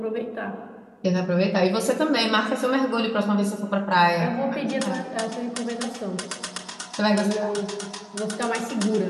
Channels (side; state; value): both; identical; correlation 1.00